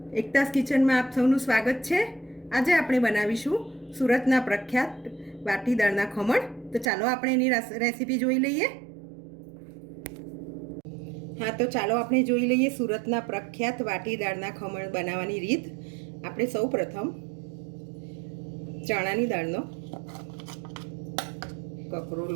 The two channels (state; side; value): drops out; left; at 6.9 s